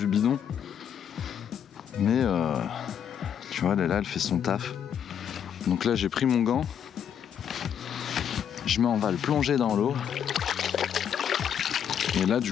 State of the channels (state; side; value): quieter; right; 8.7 dB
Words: bidon. Mais tu vois là elle fait son taf. Donc là j'ai pris mon gant. On va le plonger dans l'eau. Et là